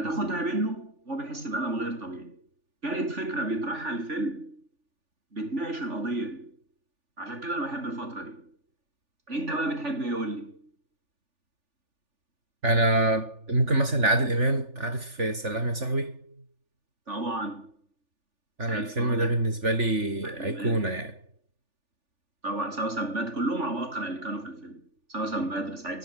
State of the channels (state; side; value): late; left; 3.4 ms